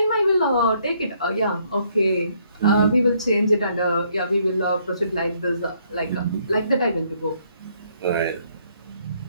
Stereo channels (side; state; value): both; inverted; correlation -0.69